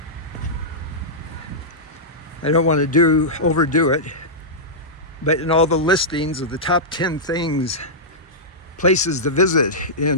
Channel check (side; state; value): both; normal; correlation -0.13